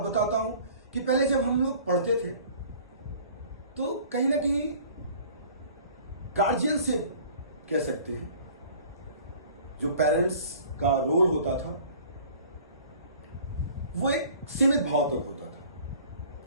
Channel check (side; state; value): both; inverted; correlation -0.49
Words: बताता हूं कि पहले जब हम लोग पढ़ते थे तो कहीं ना कहीं गार्जियनशिप कह सकते हैं, जो पेरेंट्स का रोल होता था वो एक सीमित भाव तक होता था,